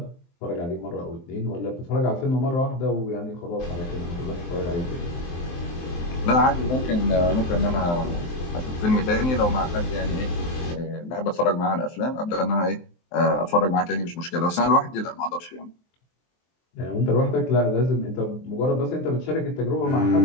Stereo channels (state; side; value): late; right; 23 ms